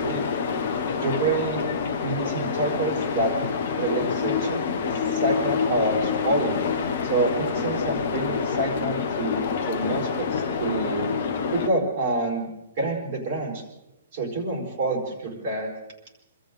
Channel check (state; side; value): inverted; both; correlation -0.39